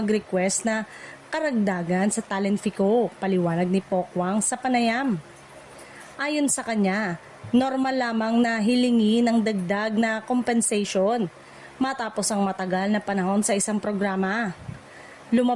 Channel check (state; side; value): identical; both; correlation 1.00